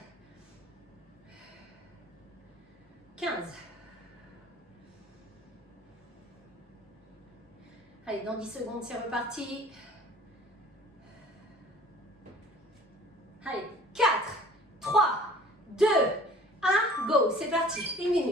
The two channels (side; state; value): both; normal; correlation 0.50